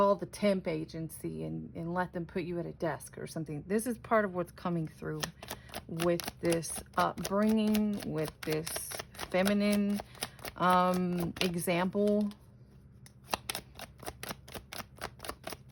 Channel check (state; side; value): identical; both; correlation 1.00